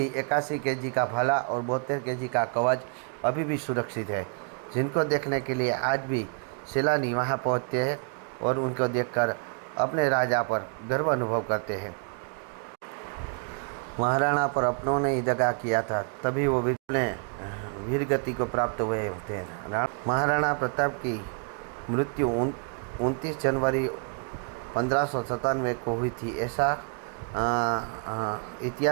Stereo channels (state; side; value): quieter; left; 38.0 dB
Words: 81 केजी का भाला और 72 केजी का कवच अभी भी सुरक्षित है, जिनको देखने के लिए आज भी सैलानी वहां पहुंचते हैं और उनको देखकर अपने राजा पर गर्व अनुभव करते हैं। महाराणा पर अपनों ने ही दगा किया था, तभी वो वीर गति को प्राप्त हुए होते हैं। महाराणा प्रताप की मृत्यु 29 जनवरी 1597 को हुई थी, ऐसा